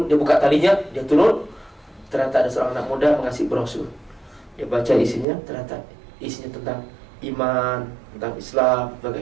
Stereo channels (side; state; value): left; drops out; at 5.2 s